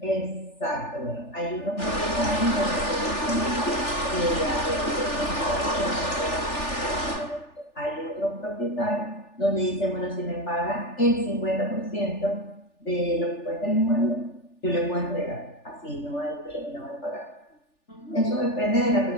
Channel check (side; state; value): right; late; 3.4 ms